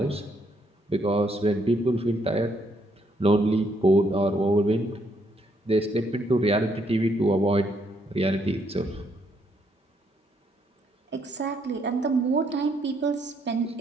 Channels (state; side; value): normal; both; correlation 0.72